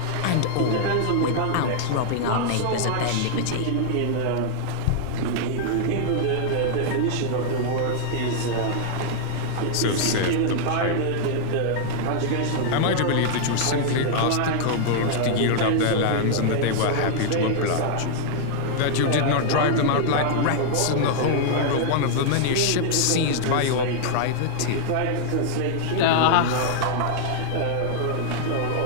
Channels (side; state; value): both; different; correlation -0.01